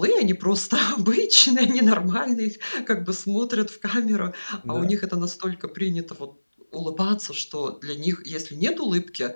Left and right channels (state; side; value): inverted; both; correlation -1.00